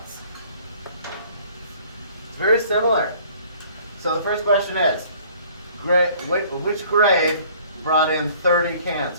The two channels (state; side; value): inverted; both; correlation -0.54